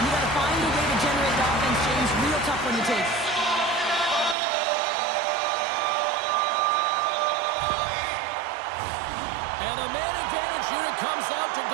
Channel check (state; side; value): drops out; left; at 4.4 s